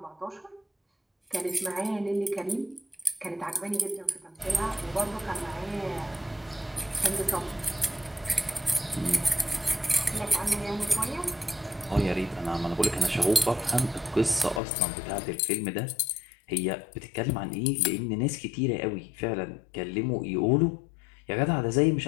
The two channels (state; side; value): drops out; right; at 14.6 s